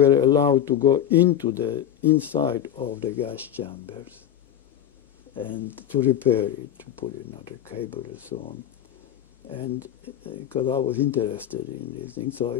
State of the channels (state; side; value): quieter; right; 10.3 dB